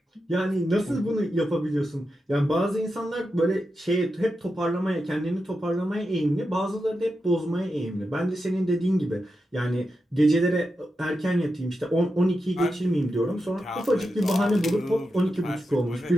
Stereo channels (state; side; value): normal; both; correlation 0.88